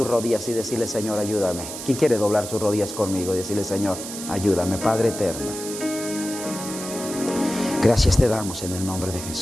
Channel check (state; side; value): noise; right; hiss, 9 dB below the sound